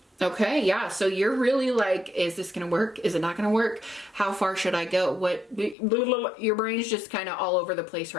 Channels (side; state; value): right; drops out; at 5.8 s